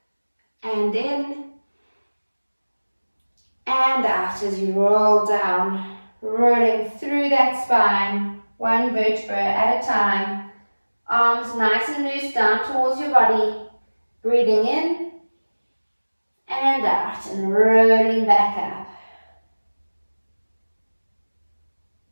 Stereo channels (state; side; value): inverted; both; correlation -1.00